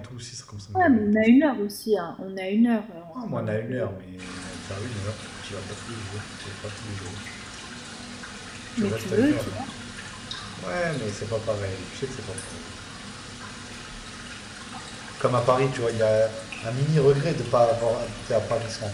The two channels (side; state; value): both; identical; correlation 1.00